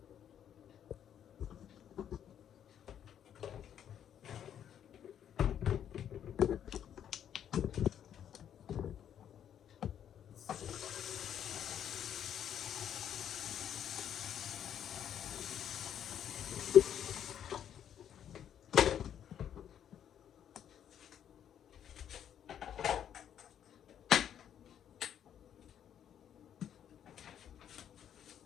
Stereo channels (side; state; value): right; quieter; 9.6 dB